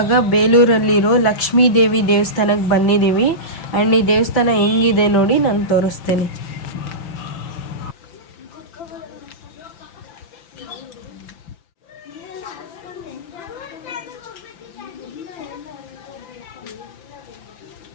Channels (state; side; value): late; right; 5.7 ms